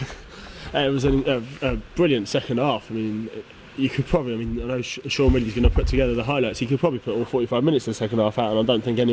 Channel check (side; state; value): both; identical; correlation 1.00